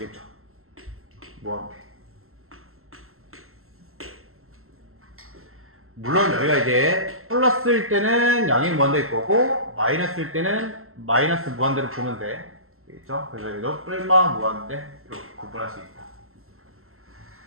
무한대. 물론 여기가 이제 플러스일 때는 양의 무한대일 거고, 마이너스일 때는 마이너스 무한대로 보면 돼. 알겠죠? 그래서 얘도 뿔마 무한대 이렇게 구분할 수 있다.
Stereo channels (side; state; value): left; late; 0.62 ms